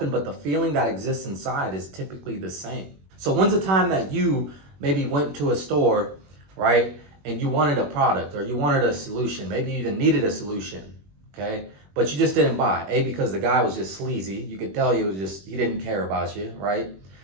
but the feeling that exists inside is typically the same. So when's the time that you maybe went to a store, right, and you wanted a product or you wanted a solution, maybe you even needed a solution, okay, but you just didn't buy. A, because the guy was just sleazy. You could tell he didn't care about you, right?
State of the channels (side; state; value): left; late; 21 ms